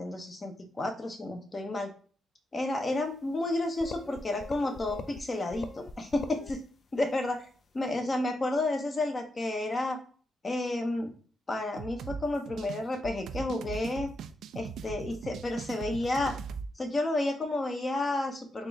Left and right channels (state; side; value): normal; both; correlation 0.85